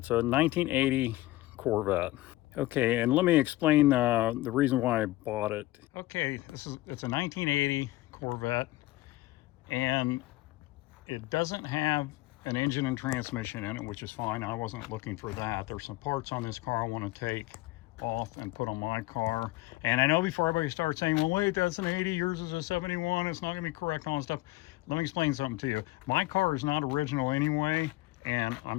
a 1980 Corvette. Okay, and let me explain the reason why I bought it. Okay, it's a 1980 Corvette, and it doesn't have an engine and transmission in it, which is fine. I wasn't looking for that. There's some parts on this car I want to take off and put on my car. And I know before everybody starts saying, well, wait, that's an 80, yours is a 71, it's not gonna be correct on stuff. Let me explain something to you. My car is not original anyway, and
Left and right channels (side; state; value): right; quieter; 18.3 dB